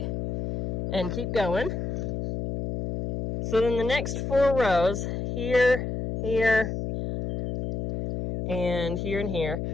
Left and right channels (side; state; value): left; noise; hum, 3 dB below the sound